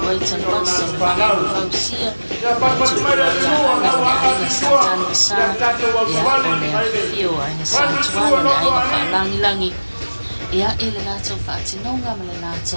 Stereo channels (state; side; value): inverted; both; correlation -1.00